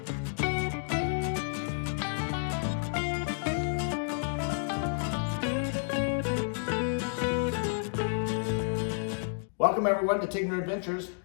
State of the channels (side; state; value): right; silent; digital silence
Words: Welcome everyone to Tigner Adventures.